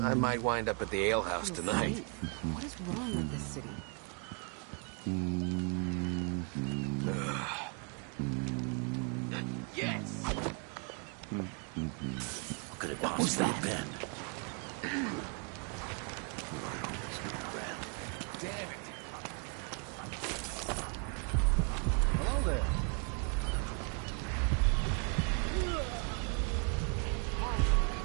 might wind up at the alehouse tonight. What is wrong with this city? Yes! What could it possibly have been? Hello there.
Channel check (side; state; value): left; quieter; 38.3 dB